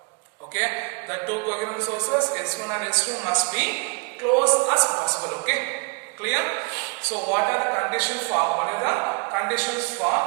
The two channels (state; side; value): quieter; left; 33.5 dB